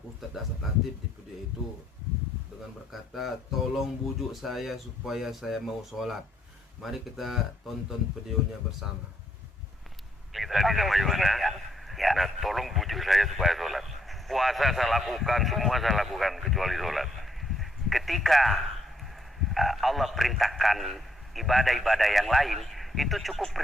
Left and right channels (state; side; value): normal; both; correlation 0.72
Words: Dasat Latif di video itu dengan berkata, tolong bujuk saya supaya saya mau sholat. Mari kita tonton videonya bersama. Tadi sama Yohana, nah tolong bujuk saya supaya sholat. Puasa saya lakukan, semua saya lakukan kecuali sholat. Ketika Allah perintahkan ibadah-ibadah yang lain, itu cukup